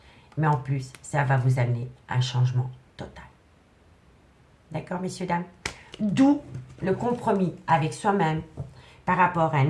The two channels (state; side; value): identical; both; correlation 1.00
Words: mais en plus, ça va vous amener un changement total. D'accord, messieurs, dames? D'où le compromis avec soi-même par rapport à